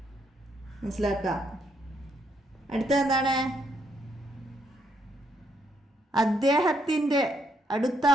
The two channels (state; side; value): normal; both; correlation 0.74